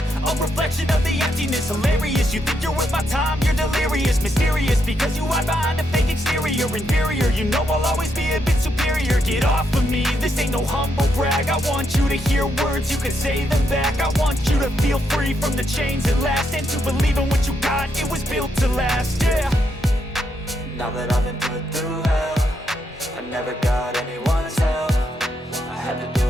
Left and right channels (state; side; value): normal; both; correlation 0.79